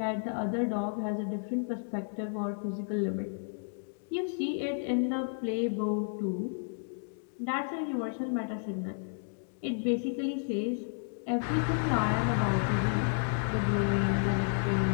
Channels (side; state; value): right; silent; digital silence